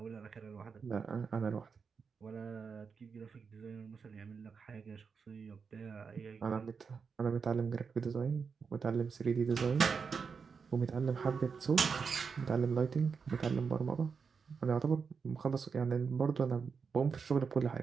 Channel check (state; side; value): quieter; left; 5.6 dB